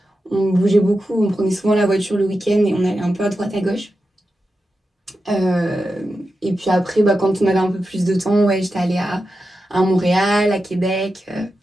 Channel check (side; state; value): both; normal; correlation 0.90